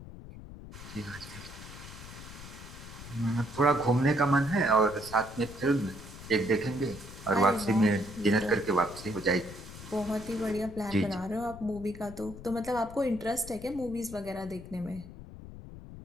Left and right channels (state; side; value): noise; left; rumble, 14 dB below the sound